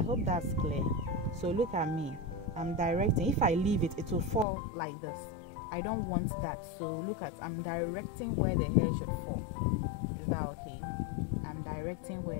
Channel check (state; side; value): drops out; right; at 4.5 s